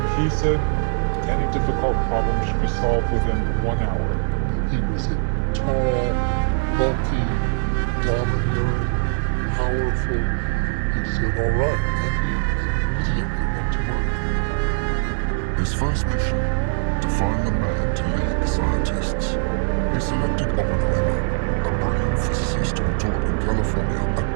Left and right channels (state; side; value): silent; left; 64 dB below the other